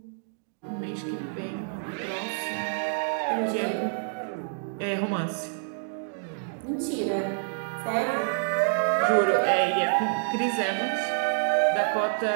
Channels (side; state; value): left; silent; digital silence